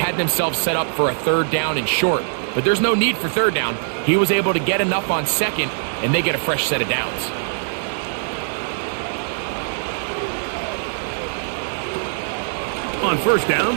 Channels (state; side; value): silent; left; digital silence